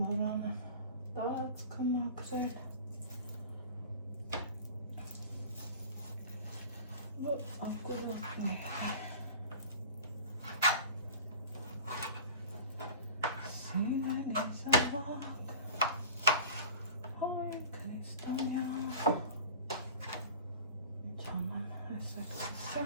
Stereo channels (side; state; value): both; inverted; correlation -0.39